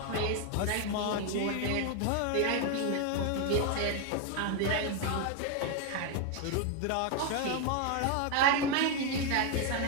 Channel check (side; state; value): both; different; correlation 0.01